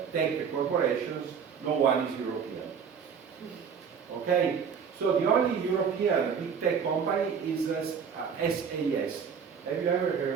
tech corporations, no one is European. Okay? So the only European big tech company is SAS. Have you ever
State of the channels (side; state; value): left; quieter; 6.8 dB